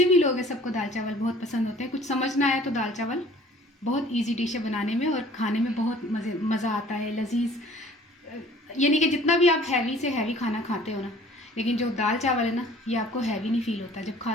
भी लोग हैं सबको दाल चावल बहुत पसंद होते हैं। कुछ समझ ना आया तो दाल चावल बहुत इजी डिश है बनाने में, और खाने में बहुत मज़ा आता है, लजीज। ये नहीं कि जितना भी आप हैवी से हैवी खाना खाते हो ना, लेकिन जो दाल चावल है ना ये आपको हैवी नहीं फील होता। जब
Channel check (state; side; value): normal; both; correlation 0.51